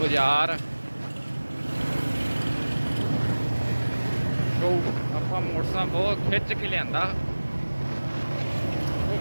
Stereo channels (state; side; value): inverted; both; correlation -1.00